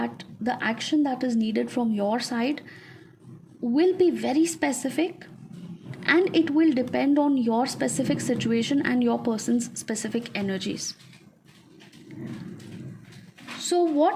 the action that is needed from your side will be very specific, and it will depend on your specific situation and your person's specific energies. So,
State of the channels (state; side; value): identical; both; correlation 1.00